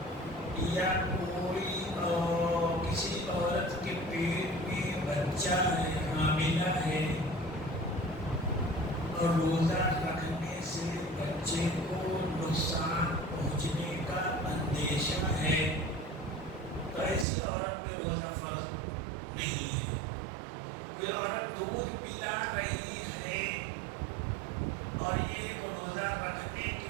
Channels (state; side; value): drops out; left; at 17.2 s